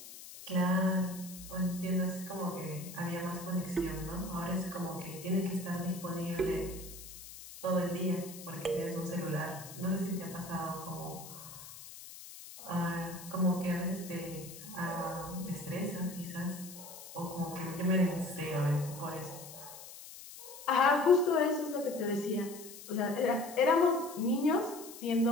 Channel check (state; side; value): noise; left; hiss, 14 dB below the sound